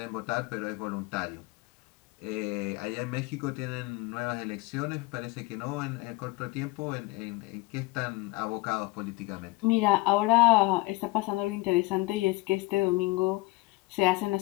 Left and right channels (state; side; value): quieter; right; 21.5 dB